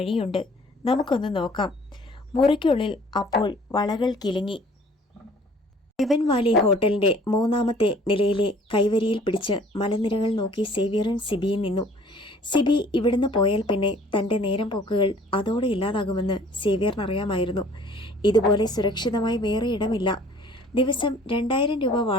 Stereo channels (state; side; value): normal; both; correlation 0.53